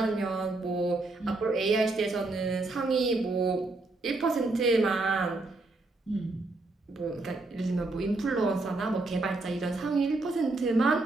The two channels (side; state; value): left; quieter; 3.2 dB